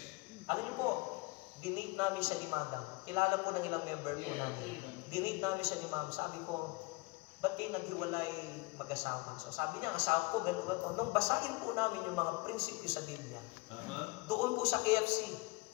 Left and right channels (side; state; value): right; quieter; 25.1 dB